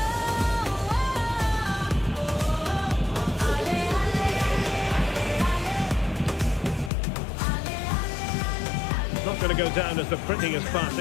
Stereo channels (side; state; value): right; drops out; at 6.9 s